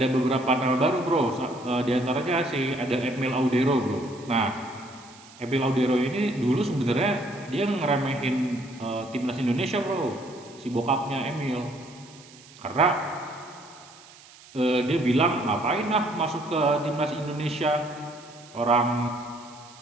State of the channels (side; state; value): right; noise; hiss, 22 dB below the sound